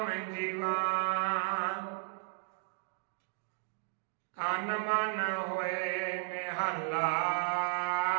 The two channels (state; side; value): silent; left; 55 dB below the other